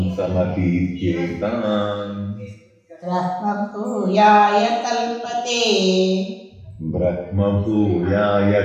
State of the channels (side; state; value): both; identical; correlation 1.00